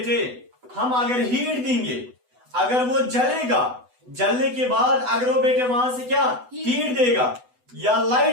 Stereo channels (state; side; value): late; left; 8.0 ms